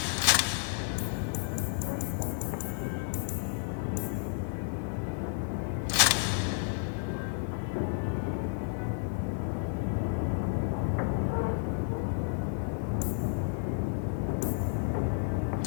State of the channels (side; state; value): right; silent; 57 dB below the other